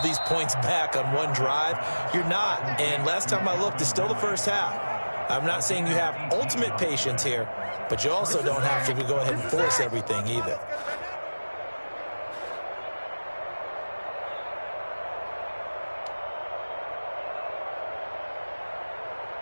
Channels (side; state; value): both; inverted; correlation -1.00